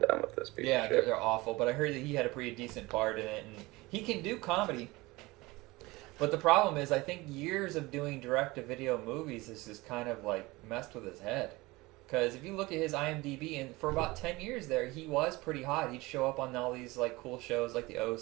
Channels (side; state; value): left; quieter; 21.7 dB